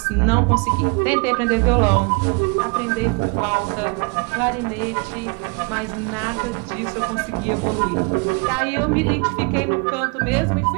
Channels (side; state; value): left; quieter; 31.3 dB